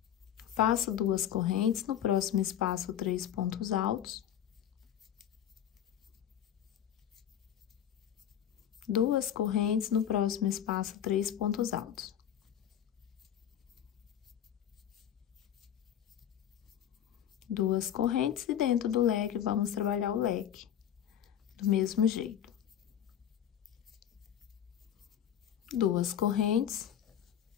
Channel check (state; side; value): quieter; right; 10.0 dB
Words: Faço duas correntes. No próximo espaço, 3 pontos altos. Duas correntes, no próximo espaço, 3 pontos altos. Duas correntes, e dentro do leque, vamos trabalhar o leque do mesmo jeito. Duas correntes